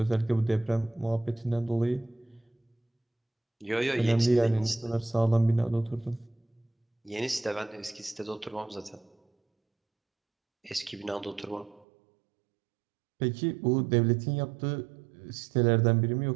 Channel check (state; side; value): drops out; left; at 11.9 s